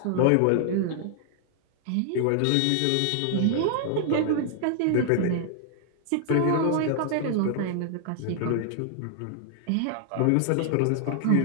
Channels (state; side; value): different; both; correlation -0.01